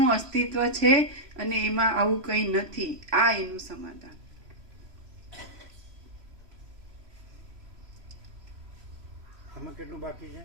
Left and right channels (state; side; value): late; left; 3.0 ms